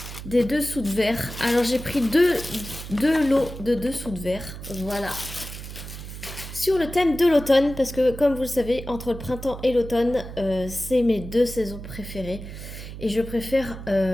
des dessous de verre. Alors j'ai pris deux lots de dessous de verre. Voilà. Sur le thème de l'automne, parce que comme vous le savez, entre le printemps et l'automne, c'est mes deux saisons préférées. Et je préfère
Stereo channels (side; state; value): right; noise; hum, 11 dB below the sound